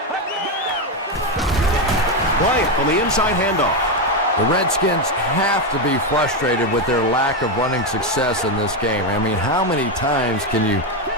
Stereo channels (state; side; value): normal; both; correlation 0.08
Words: Bryant on the inside handoff. The Redskins have to be frustrated with their lack of running success in this game. I mean, how many times can you